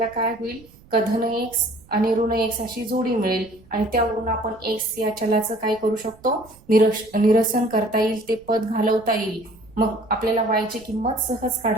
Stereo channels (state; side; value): noise; right; rumble, 26 dB below the sound